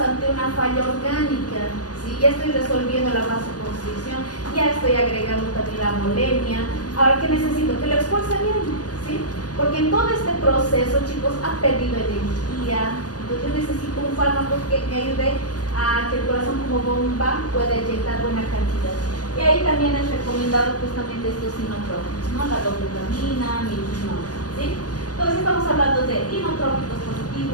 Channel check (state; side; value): late; right; 0.68 ms